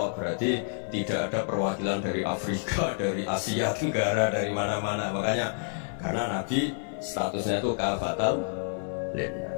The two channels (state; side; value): silent; right; 59 dB below the other